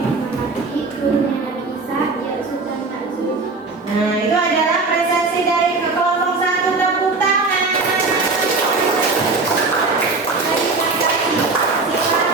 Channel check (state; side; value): quieter; left; 3.8 dB